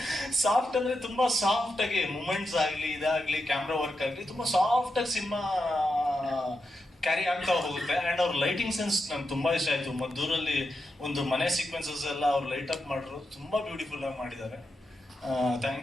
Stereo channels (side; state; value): both; normal; correlation 0.87